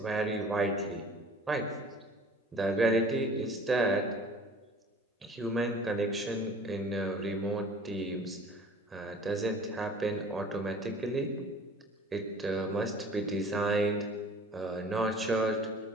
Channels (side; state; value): both; normal; correlation 0.47